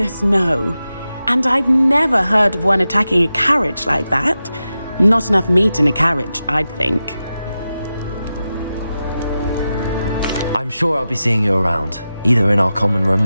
no. And I've never heard of one attacking a carriage like that. Not enough meat in a carriage, I'd think. I'm sure I'll be seeing you around, either in our common room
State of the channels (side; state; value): both; inverted; correlation -0.92